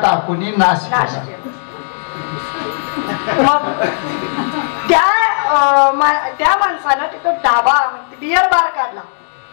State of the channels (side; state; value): right; silent; digital silence